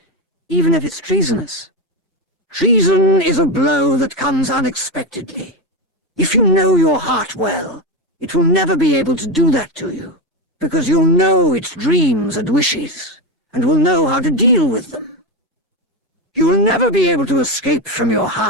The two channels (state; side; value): normal; both; correlation 0.13